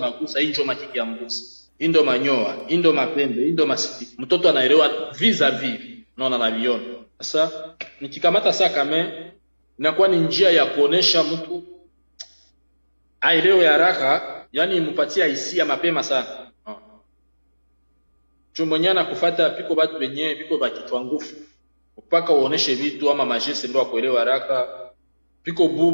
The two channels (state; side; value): inverted; both; correlation -1.00